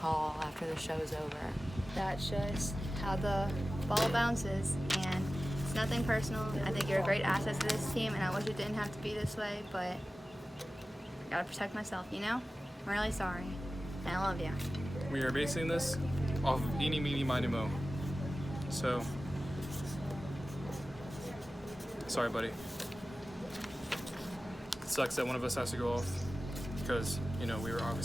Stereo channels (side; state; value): both; normal; correlation 0.95